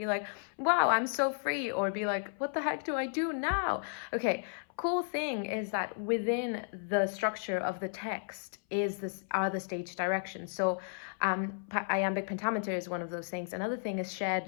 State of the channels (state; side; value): silent; right; 55 dB below the other